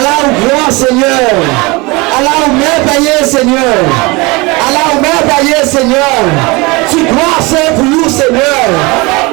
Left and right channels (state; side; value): quieter; left; 25.2 dB